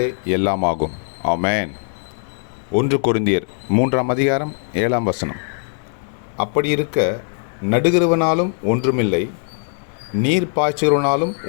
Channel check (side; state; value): right; silent; 64 dB below the other